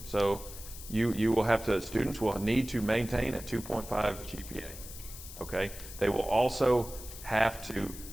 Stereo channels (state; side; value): noise; left; hiss, 13 dB below the sound